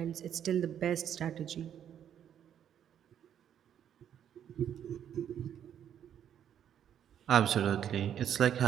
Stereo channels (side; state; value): left; quieter; 9.6 dB